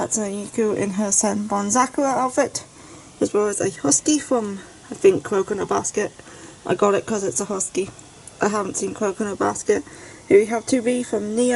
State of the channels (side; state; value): both; identical; correlation 1.00